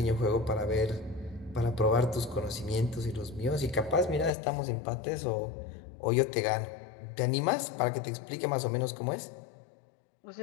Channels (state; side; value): drops out; right; at 4.3 s